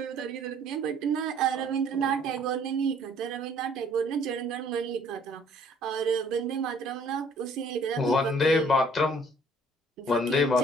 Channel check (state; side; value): normal; both; correlation 0.58